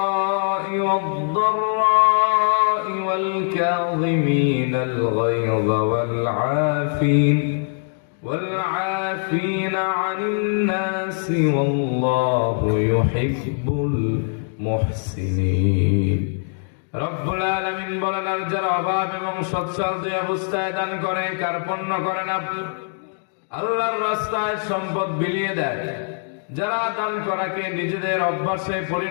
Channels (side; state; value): right; silent; digital silence